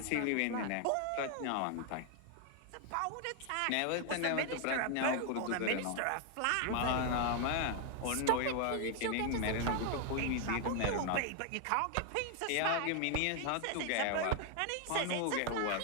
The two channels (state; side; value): different; both; correlation 0.00